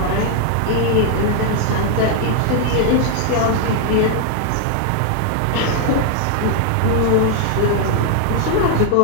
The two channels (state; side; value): different; both; correlation 0.00